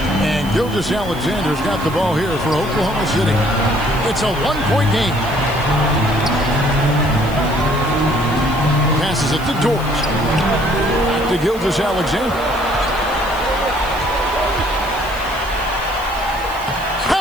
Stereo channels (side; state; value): right; noise; hiss, 19 dB below the sound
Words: And Gilgeous-Alexander's got the ball here for Oklahoma City. It's a 1-point game. Passes it to Dort. Back to Gilgeous-Alexander.